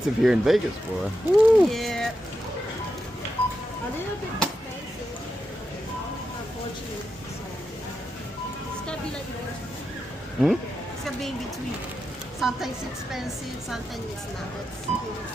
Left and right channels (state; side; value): normal; both; correlation 0.87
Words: here in Vegas, boy. Woo. Yeah. A little bit expensive, unfortunately. So it's gonna be like that. It's gonna be in between. Sometimes it's expensive, sometimes it's not.